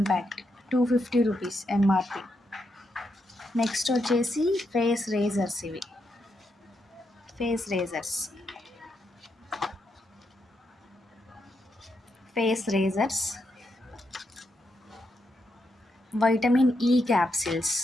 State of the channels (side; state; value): both; normal; correlation 0.82